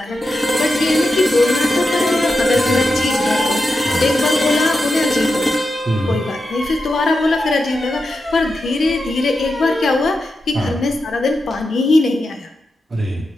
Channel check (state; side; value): normal; both; correlation 0.89